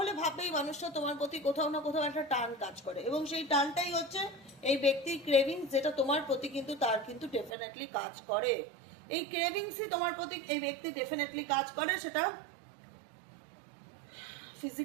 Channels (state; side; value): drops out; left; at 7.5 s